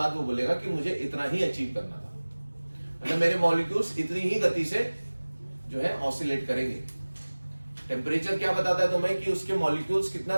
वो बोलेगा कि मुझे इतना ही अचीव करना था, मतलब मेरे मॉलिक्यूल्स इतनी ही गति से जो है ऑसिलेट करेंगे। टेम्परेचर क्या बताता है तुम्हें कि उसके मॉलिक्यूल्स कितना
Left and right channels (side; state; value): both; inverted; correlation -1.00